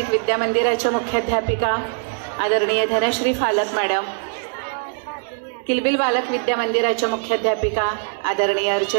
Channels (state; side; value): silent; left; 61 dB below the other